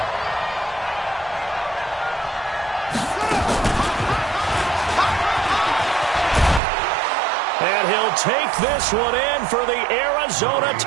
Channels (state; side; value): drops out; left; at 6.6 s